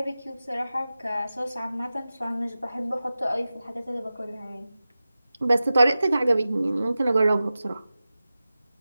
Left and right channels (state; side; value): inverted; both; correlation -0.95